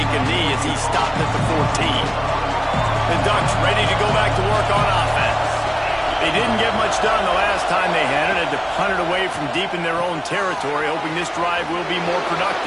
a knee as he stopped at the 14. The Ducks ready to go back to work on offense. They didn't get much done the last time they had it. Had to punt it away from deep in their own territory, hoping this drive will be more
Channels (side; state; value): both; identical; correlation 1.00